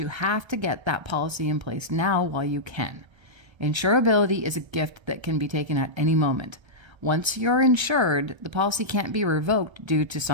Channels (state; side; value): late; left; 1.3 ms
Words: have to get that policy in place now while you can. Insurability is a gift that can be taken at any moment. Once you're insured, the policy can't be revoked due to